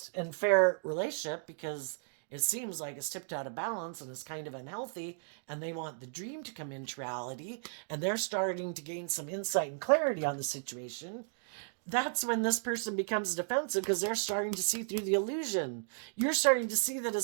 and fair relationship because it seems like it's tipped out of balance and is kind of unhealthy, and they want the dream to come into reality, and they're starting to gain some insight and clarity on the situation, that's when this person becomes defensive because they're starting to see through the illusion. You're starting to see that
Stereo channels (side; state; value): left; silent; digital silence